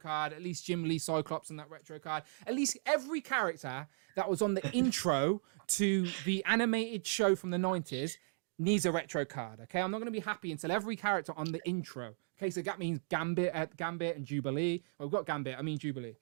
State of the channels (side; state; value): left; silent; digital silence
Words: At least Jim Lee Cyclops on that retro card. At least every character that was on the intro to the animated show from the 90s needs a retro card, okay? I'm not going to be happy until every character on the intro. Okay, so that means Gambit and Jubilee. Well, we've got Gambit, I mean Jubilee.